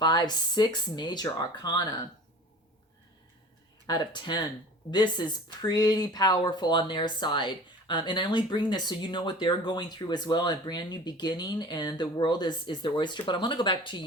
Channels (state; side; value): normal; both; correlation 0.42